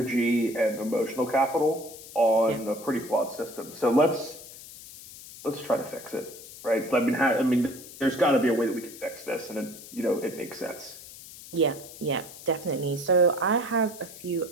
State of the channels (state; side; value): noise; left; hiss, 16 dB below the sound